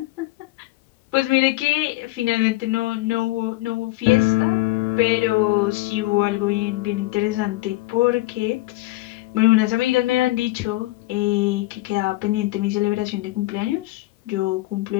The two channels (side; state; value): right; quieter; 19.4 dB